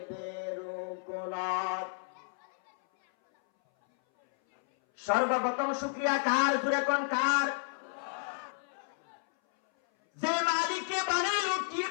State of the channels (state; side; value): silent; right; 56 dB below the other